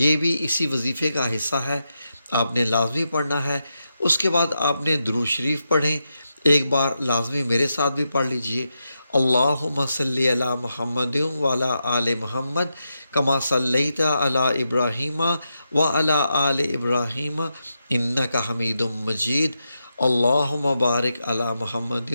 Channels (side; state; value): both; inverted; correlation -0.86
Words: بھی اسی وظیفے کا حصہ ہے، آپ نے لازمی پڑھنا ہے۔ اس کے بعد آپ نے درود شریف پڑھیں، ایک بار لازمی میرے ساتھ بھی پڑھ لیجئے، اللہم صلی علی محمد وعلی آل محمد کما صلیت علی ابراہیم وعلی آل ابراہیم انک حمید مجید، اللہم بارک علی محمد